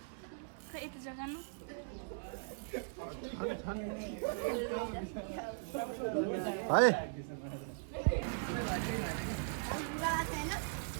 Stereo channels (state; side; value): silent; left; digital silence